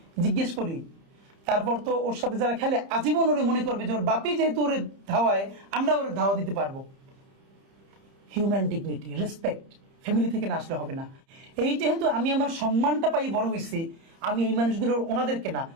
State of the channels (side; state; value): left; late; 30 ms